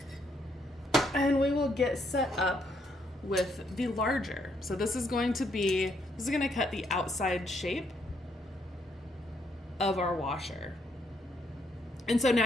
and we will get set up with the larger. So this is going to cut the outside shape of our washer. And so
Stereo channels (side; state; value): both; normal; correlation 0.73